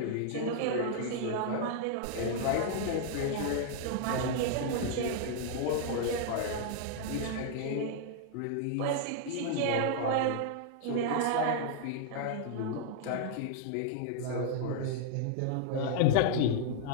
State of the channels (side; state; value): both; different; correlation -0.01